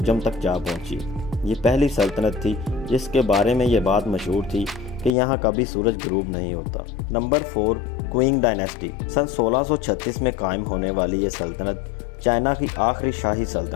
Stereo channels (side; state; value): right; drops out; at 5.1 s